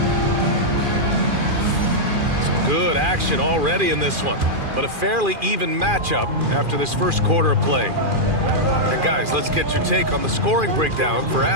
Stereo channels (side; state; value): left; late; 2.4 ms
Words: Some good action already in this one, but a fairly even matchup after this first quarter of play. And guys, let's get your take on the scoring breakdown for